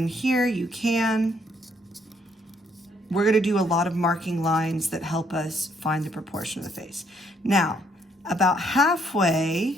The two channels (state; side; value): normal; both; correlation 0.69